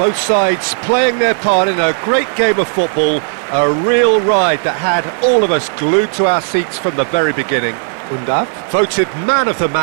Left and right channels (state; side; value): silent; left; digital silence